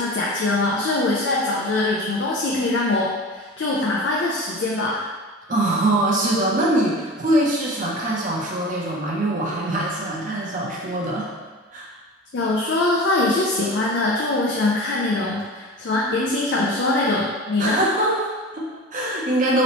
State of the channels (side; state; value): both; normal; correlation 0.34